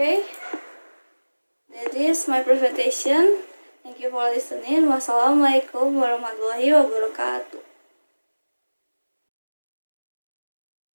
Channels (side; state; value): both; inverted; correlation -1.00